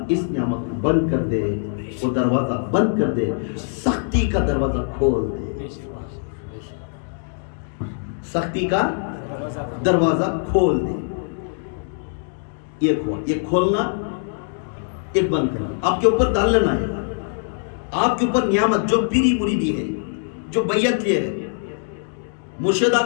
اس نعمت کو بند کر دے، وہ دروازہ بند کر دے، سختی کا دروازہ کھول دے، سختی کا دروازہ کھول دے۔ یہ کھولنا، ایک بند کرنا، آپ کے اوپر ڈال لینا ہے۔ آپ کے اوپر نعمت جو پیری مریدی ہے، جو بیعت لیے ہے، مرشد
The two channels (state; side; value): silent; right; 64 dB below the other